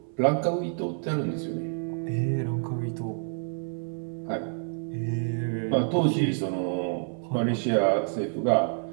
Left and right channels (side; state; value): left; silent; 59 dB below the other